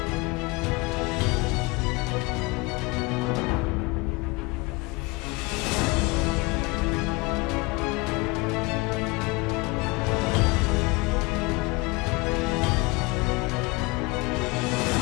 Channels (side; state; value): right; quieter; 25.4 dB